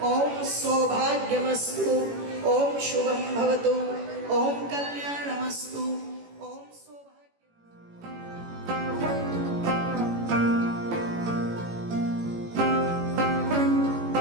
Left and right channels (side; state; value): left; late; 18 ms